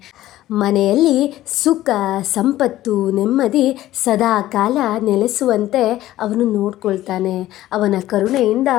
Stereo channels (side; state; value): right; quieter; 14.7 dB